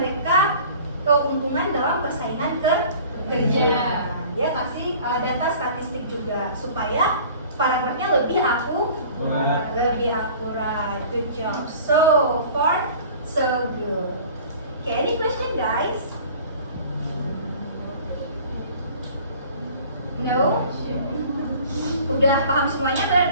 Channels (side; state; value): both; inverted; correlation -0.46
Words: keuntungan dalam persaingan kerja. Dia kasih data statistik juga supaya paragrafnya lebih akurat. Good job. So far, so good. Okay, any question, guys? No? Udah paham semuanya